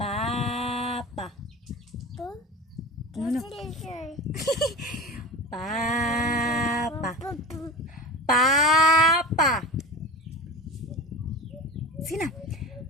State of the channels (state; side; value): normal; both; correlation 0.31